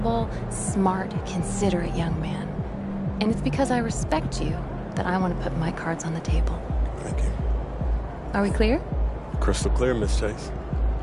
smart, considerate young man. And it's because I respect you that I want to put my cards on the table. Thank you. Are we clear? Crystal clear, Miss Chase.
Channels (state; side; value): identical; both; correlation 1.00